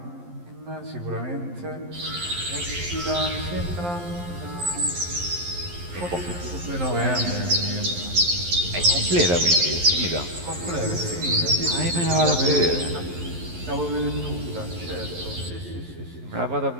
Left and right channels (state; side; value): late; left; 11 ms